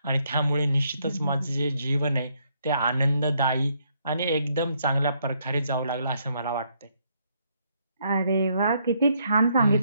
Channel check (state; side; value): inverted; both; correlation -0.73